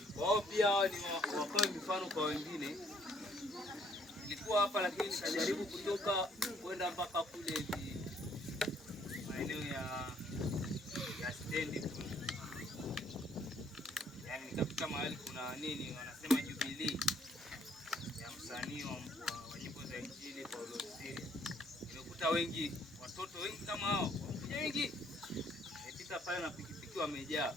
wao, pia hao ni wakawe mifano kwa wengine. Nilikuwa hapa lakini nikajaribu kutoka kwenda mpaka kule hivi maeneo ya stendi kule. Yaani nikafika mahali kuna nini wanasema Jubilee ya msanii wa nyimbo za Injili Paulo Siria. Nimekuta wengi, watoto wengi kama hao, wengi. Nimepita pale na pikipiki wamejaa.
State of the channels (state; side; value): normal; both; correlation 0.65